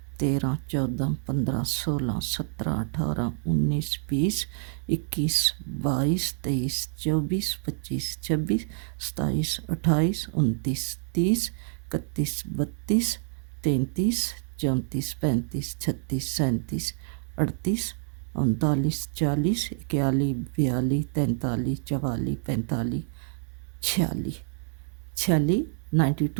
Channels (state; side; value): silent; left; digital silence